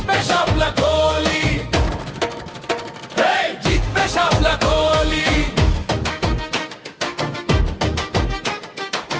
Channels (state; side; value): identical; both; correlation 1.00